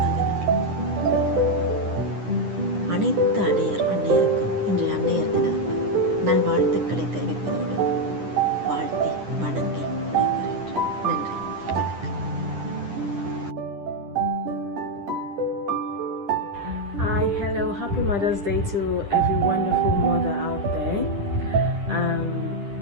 அனைத்து அன்னையருக்கும் இன்றைய அன்னையர் தின நல்வாழ்த்துக்களை தெரிவிப்பதோடு வாழ்த்தி வணங்கி விடைபெறுகின்றேன். நன்றி, வணக்கம். Hi, hello, happy Mother's Day to every wonderful mother out there.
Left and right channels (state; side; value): late; left; 9.9 ms